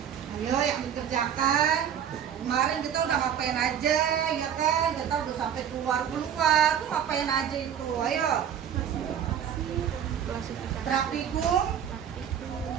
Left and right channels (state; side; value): quieter; left; 9.0 dB